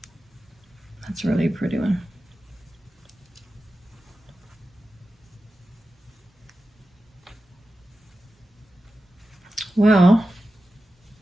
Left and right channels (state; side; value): normal; both; correlation 0.93